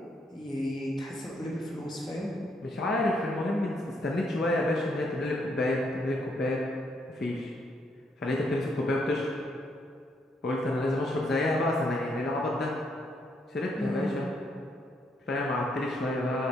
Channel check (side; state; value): both; normal; correlation 0.74